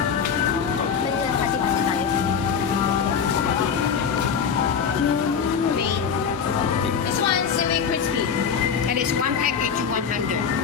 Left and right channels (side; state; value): right; quieter; 6.8 dB